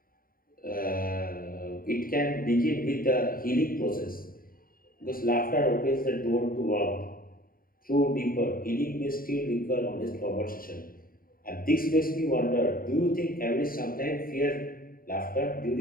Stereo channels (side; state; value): right; late; 0.42 ms